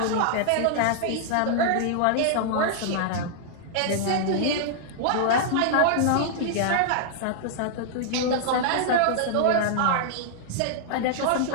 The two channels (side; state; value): both; different; correlation -0.01